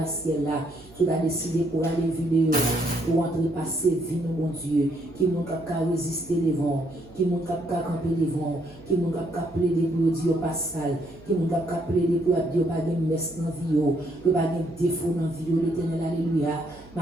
ciel là, tout a décidé pour aller vidéo, pour entrer passer vie, mon Dieu, qui m'ont qu'à résister les vents, qui m'ont qu'à camper les vents, qui m'ont qu'à plaider pour dire pas sale, qui m'ont qu'à plaider pour dire pas de messe dans vie, pour pas de défaut dans vie, l'éternel, alléluia.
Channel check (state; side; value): noise; right; hum, 23 dB below the sound